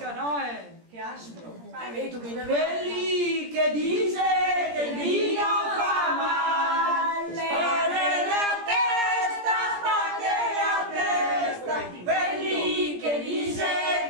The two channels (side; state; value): left; late; 17 ms